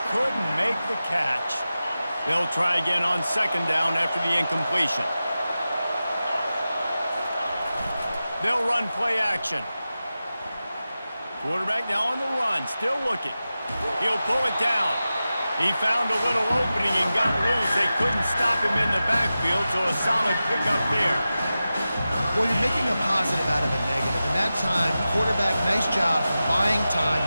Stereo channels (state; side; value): inverted; both; correlation -0.94